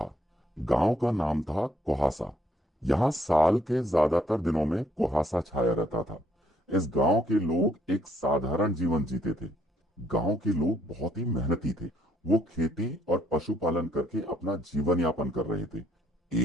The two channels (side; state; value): both; normal; correlation 0.68